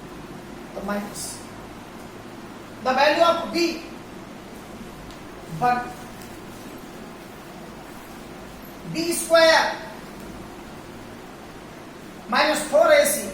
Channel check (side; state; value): both; identical; correlation 1.00